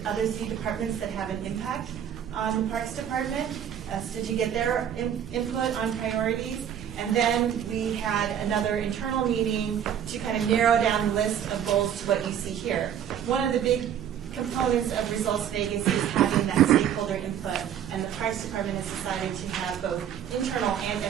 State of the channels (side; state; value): left; quieter; 9.4 dB